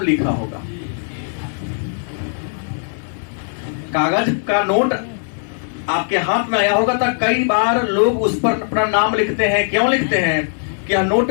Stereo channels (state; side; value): silent; right; digital silence